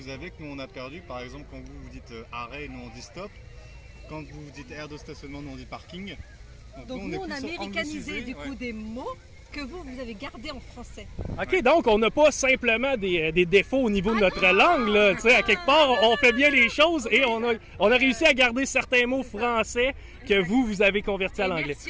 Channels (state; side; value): identical; both; correlation 1.00